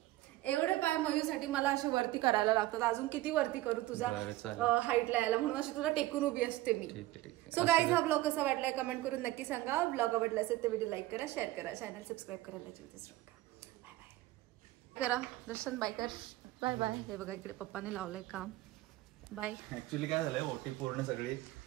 एवढे पाय मयूसाठी मला असे वरती करायला लागतात. अजून किती वरती करू तुझा हाईटला यायला म्हणून अशी तुला टेकून उभी असते मी. सो गाईज हा ब्लॉग कसा वाटलाय कमेंट करून नक्की सांगा. ब्लॉग आवडला असेल तर व्हिडिओ लाईक करा शेअर करा चॅनल सबस्क्राईब करायला बाय बाय करा. दर्शन बाय कर. Bye bye. हे बघा इकडे पप्पाने लावलंय काम. बाय. ऍक्च्युली काय झालंय ओटी पूर्ण सगळी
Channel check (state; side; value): quieter; left; 17.1 dB